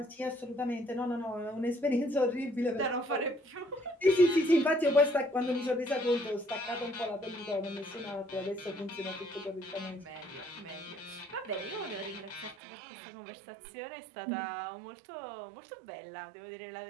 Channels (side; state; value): left; drops out; at 12.6 s